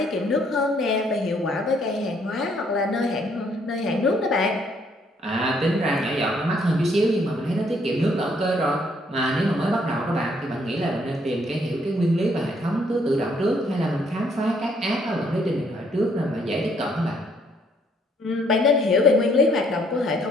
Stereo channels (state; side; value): normal; both; correlation 0.67